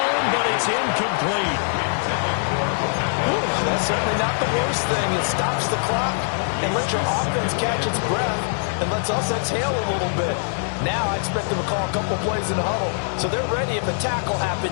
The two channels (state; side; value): silent; right; 64 dB below the other